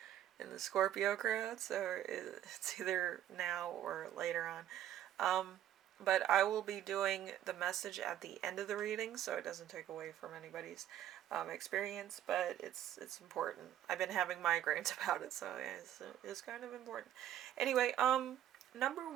in the Scorpio crowd, so it's either now or later on. But I will be doing the message at the end of the reading, so it doesn't take away from anybody's experience, but it's important. I've been having migraines about it, so yeah, it's kind of important. Anyway, number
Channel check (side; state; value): left; quieter; 11.5 dB